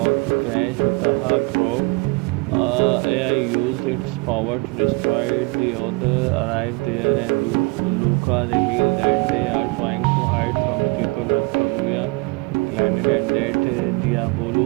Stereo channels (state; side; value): quieter; left; 27.4 dB